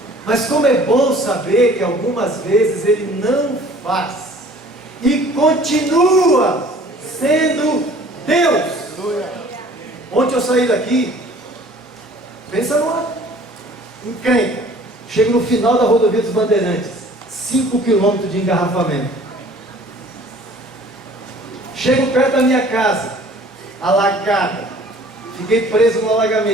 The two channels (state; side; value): normal; both; correlation 0.51